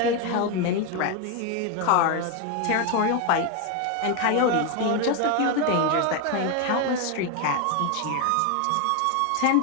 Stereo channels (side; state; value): both; different; correlation 0.01